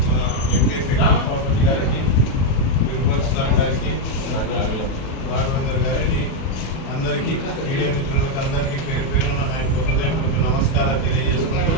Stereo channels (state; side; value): late; right; 37 ms